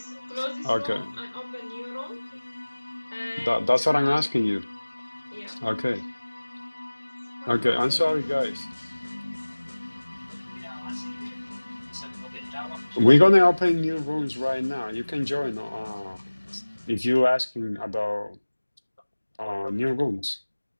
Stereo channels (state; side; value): inverted; both; correlation -1.00